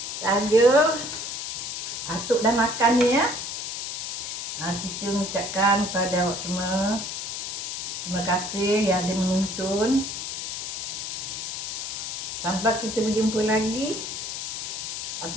saja atuk dah makan ni ya. Kita mengucapkan kepada awak semua terima kasih yang ada menonton. Sampai kita berjumpa lagi.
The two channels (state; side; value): noise; left; hiss, 5 dB below the sound